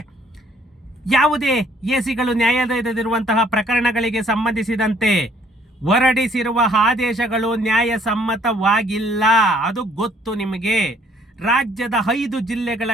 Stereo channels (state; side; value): normal; both; correlation 0.62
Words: ಯಾವುದೇ ಎಸಿಗಳು ನ್ಯಾಯಾಲಯದಲ್ಲಿರುವಂತಹ ಪ್ರಕರಣಗಳಿಗೆ ಸಂಬಂಧಿಸಿದಂತೆ ಹೊರಡಿಸಿರುವ ಆದೇಶಗಳು ನ್ಯಾಯಸಮ್ಮತವಾಗಿಲ್ಲ. ಅದು ಗೊತ್ತು ನಿಮಗೆ. ರಾಜ್ಯದ 5 ಜಿಲ್ಲೆಗಳ